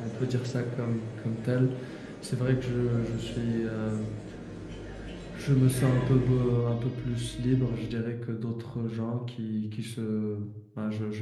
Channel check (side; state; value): both; identical; correlation 1.00